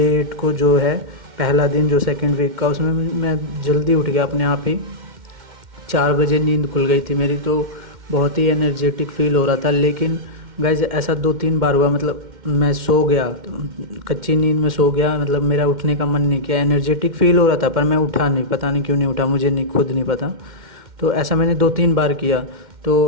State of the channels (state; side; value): late; left; 2.1 ms